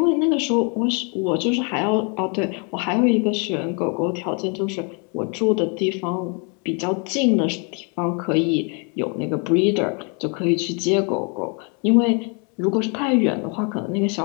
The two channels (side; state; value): right; quieter; 35.3 dB